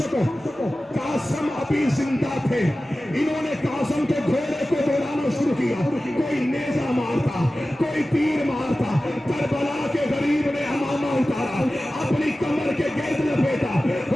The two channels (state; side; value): normal; both; correlation 0.95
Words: سکو. قاسم ابھی زندہ تھے. انہوں نے قاسم کے گھوڑے کو دوڑانا شروع کیا. کوئی نیزہ مارتا، کوئی تیر مارتا. کربلا کے غریب نے امامہ اتارا، اپنی کمر کے گرد لپیٹا.